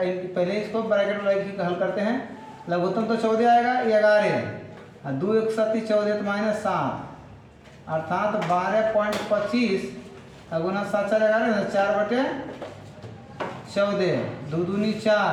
पहले इसको ब्रैकेट में हल करते हैं। लघुत्तम तो 14 आएगा, 11 और 2 1 7 14 तो -7, अर्थात 12.25 गुना 7 4 11 ना, 4/14, 2 दूनी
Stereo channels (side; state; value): both; identical; correlation 1.00